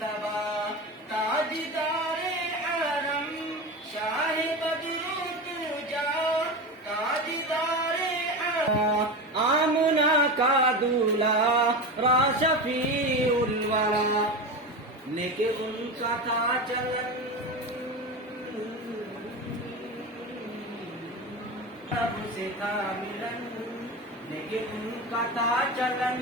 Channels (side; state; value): both; normal; correlation 0.23